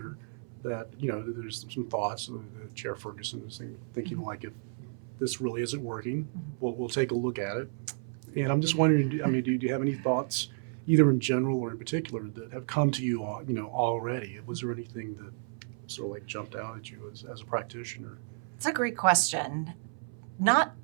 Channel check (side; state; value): left; silent; 57 dB below the other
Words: that, there's some thoughts. Chair Ferguson is thinking like, if this really isn't working, we'll take a look at it. And I'm just wondering, I mean, do you have any thoughts, either in general or in particular, that have come to you, already? Was there anything that sort of like jumped out at you as a practitioner? It's a great question. Not